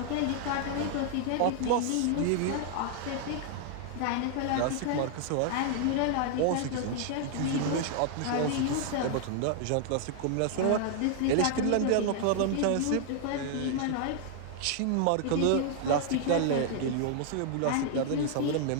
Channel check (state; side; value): different; both; correlation 0.00